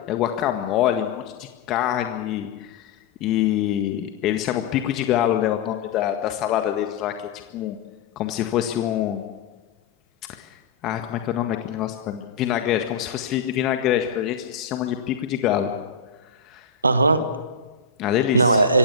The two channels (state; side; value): quieter; right; 5.0 dB